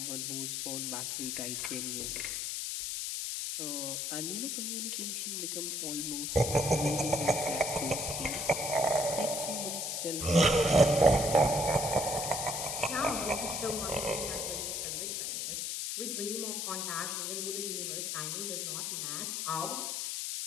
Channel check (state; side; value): noise; left; hiss, 2 dB below the sound